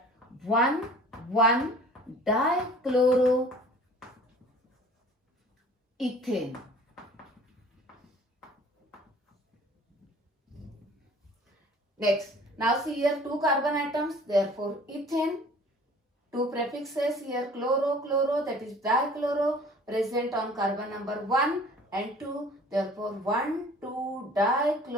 1, 1 dichloroethane. Next, now see here 2 carbon atoms, therefore ethane. 2 prefixes here chloro, chloro, that is dichloro, present on carbon number 1 and 2, therefore 1, 2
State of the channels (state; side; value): normal; both; correlation 0.49